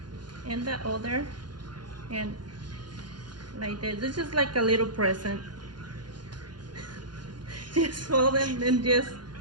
and the other, and like this. It's just like a little present. Just fold it and just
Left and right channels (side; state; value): left; late; 0.71 ms